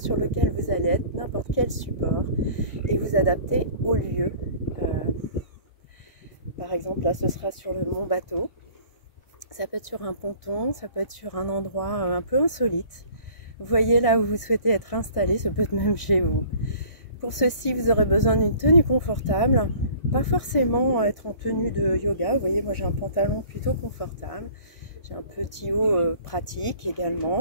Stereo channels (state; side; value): late; right; 1.6 ms